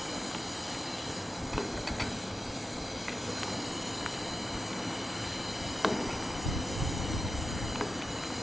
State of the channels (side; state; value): both; normal; correlation 0.91